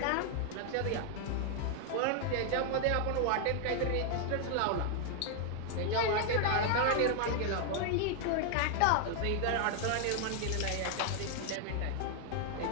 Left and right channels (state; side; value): different; both; correlation 0.00